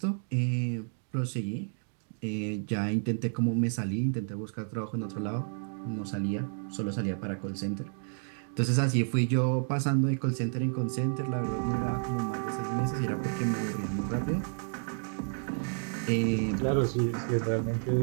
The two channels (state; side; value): silent; left; 57 dB below the other